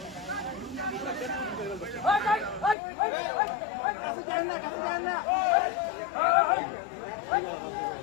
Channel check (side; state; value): right; drops out; at 2.8 s